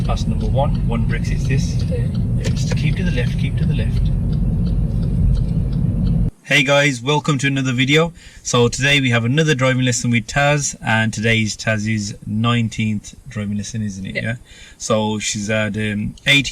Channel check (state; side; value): identical; both; correlation 1.00